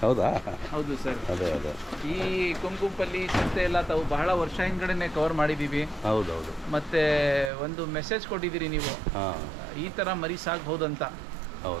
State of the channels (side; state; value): left; drops out; at 7.5 s